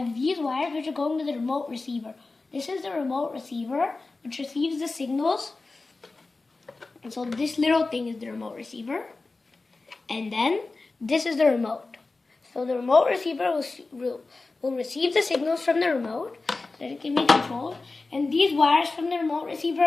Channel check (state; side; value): quieter; right; 3.6 dB